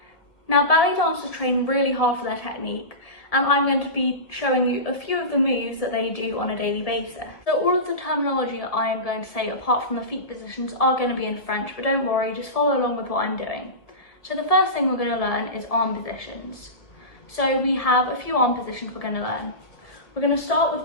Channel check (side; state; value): right; late; 1.7 ms